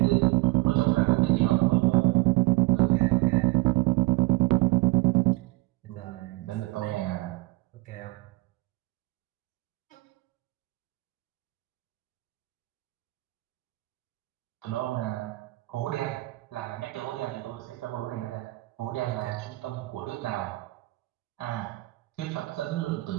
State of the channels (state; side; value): quieter; left; 21.3 dB